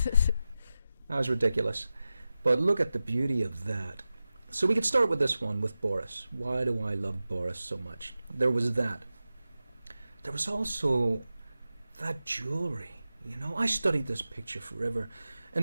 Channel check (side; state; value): both; inverted; correlation -0.94